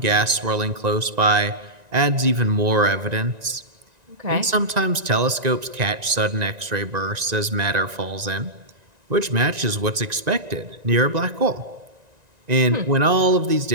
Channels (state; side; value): late; left; 1.9 ms